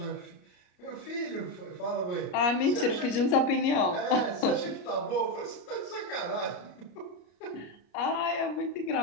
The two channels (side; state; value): right; late; 34 ms